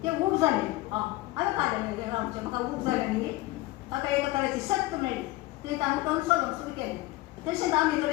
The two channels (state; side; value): quieter; right; 18.5 dB